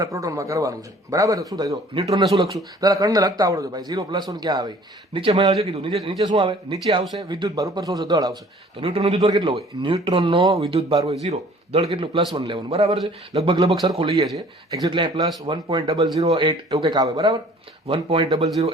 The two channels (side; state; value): both; normal; correlation 0.52